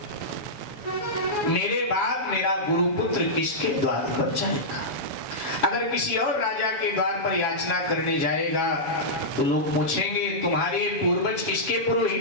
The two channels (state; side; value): late; right; 7.2 ms